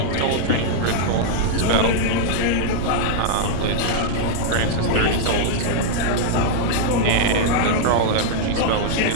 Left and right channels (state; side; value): different; both; correlation -0.01